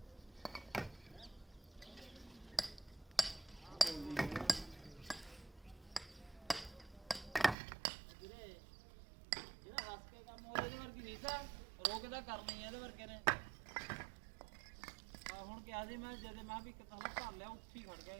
ਰੋਕਦਾ ਕਰਨੀ ਇਹਦੇ ਵਰਗੇ ਨੇ ਹੁਣ ਕਿਹਾ ਸੀ ਮੈਂ ਜਦੇ ਮੈਂ ਵੀ ਕਿਤਾ ਨੂੰ ਭਰ ਲਿਆ ਉੱਥੇ ਹੀ ਖੜ ਗਿਆ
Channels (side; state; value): left; drops out; at 7.6 s